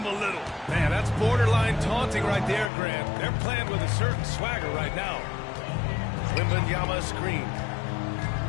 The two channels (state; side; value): drops out; right; at 2.7 s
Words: a little. Man, that's borderline taunting right there, Grant. They're playing with a certain swagger right now. Wembanyama screen.